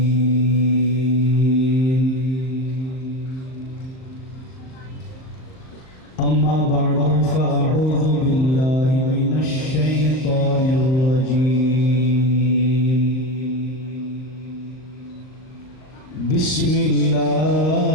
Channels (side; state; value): right; late; 38 ms